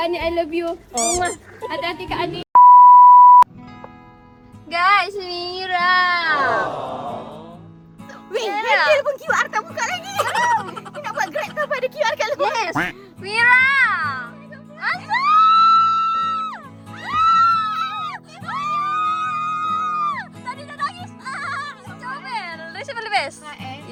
Adi, I love you. Hati-hati Kak Adi. Guys, Mira. Weh, handle pun QR tak buka lagi. Ni nak buat Grab tak ada QR kat luar. Yes. Mira. Asal? Tadi dah nangis. Comel. Rasa paling best.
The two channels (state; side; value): identical; both; correlation 1.00